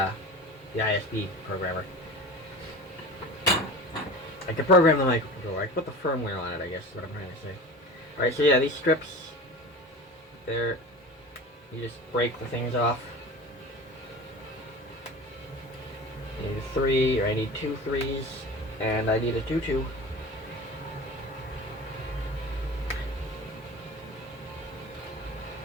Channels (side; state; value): both; normal; correlation 0.34